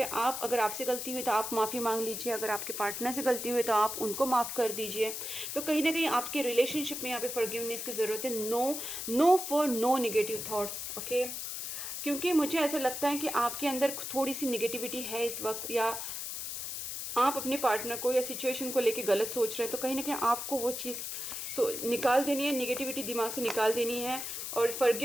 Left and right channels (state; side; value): noise; left; hiss, 5 dB below the sound